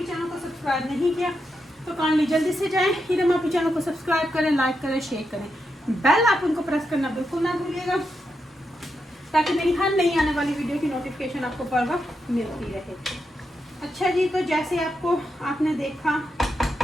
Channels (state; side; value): normal; both; correlation 0.85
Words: चैनल को सब्सक्राइब नहीं किया तो काइंडली जल्दी से जाएं, हीरा माफी चैनल को सब्सक्राइब करें, लाइक करें, शेयर करें, बेल आप उनको प्रेस करना बिल्कुल ना भूलिएगा ताकि मेरी हर नई आने वाली वीडियो की नोटिफिकेशन आपको पर वक्त मिलती रहे। अच्छा जी, तो जैसे आपने देखा